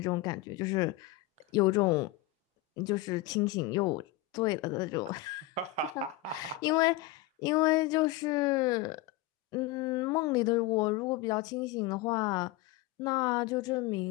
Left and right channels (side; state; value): right; quieter; 16.2 dB